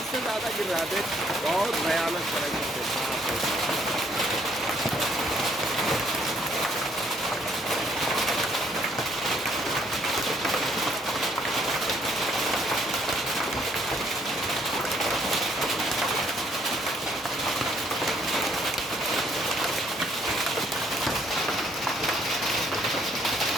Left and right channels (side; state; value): both; normal; correlation 0.67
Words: ज़्यादा गिर रहा है। देख बहुत भयानक तरीके से।